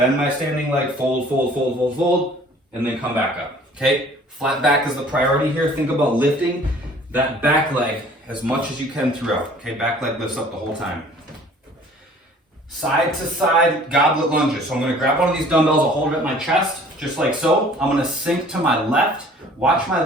my standing leg, fold, fold, fold, fold, fold, and then come back up, okay? Flat back is the priority here. Think about lifting that back leg as much as you can throughout, okay? Back leg lifts up the whole time. Side to side goblet lunges. So I'm gonna grab one of these dumbbells, I'll hold it at my chest, just like so. I'm gonna sink to my left, watch my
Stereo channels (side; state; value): both; normal; correlation 0.52